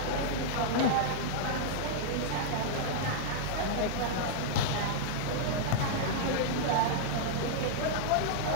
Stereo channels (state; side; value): different; both; correlation -0.01